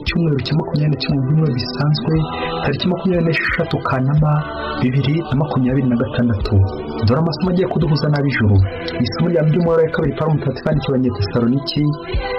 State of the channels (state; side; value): identical; both; correlation 1.00